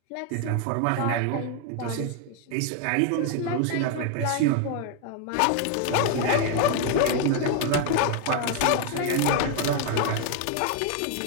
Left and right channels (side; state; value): both; different; correlation 0.01